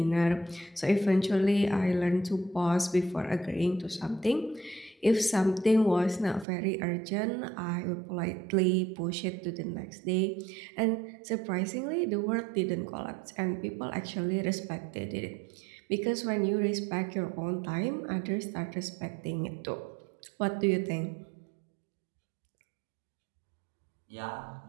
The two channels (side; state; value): left; drops out; at 6.5 s